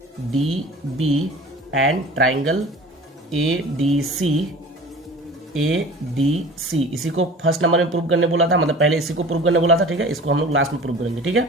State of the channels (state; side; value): normal; both; correlation 0.42